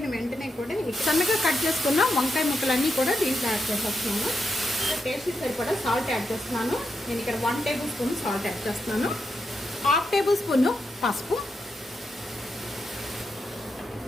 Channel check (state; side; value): normal; both; correlation 0.84